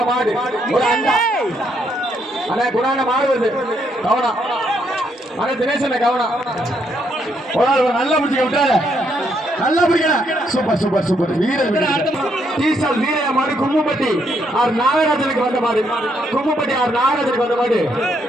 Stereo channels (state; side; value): normal; both; correlation 0.74